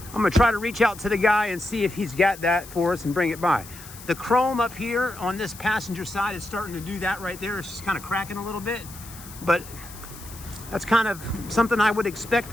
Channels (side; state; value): left; noise; hiss, 16 dB below the sound